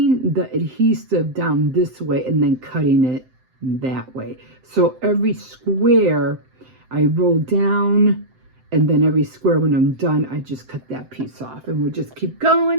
the adhesive down this way and then cutting it that way. So every square I roll down, and then every square, when I'm done, I just cut that piece off. And we'll just keep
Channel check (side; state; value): left; late; 7.8 ms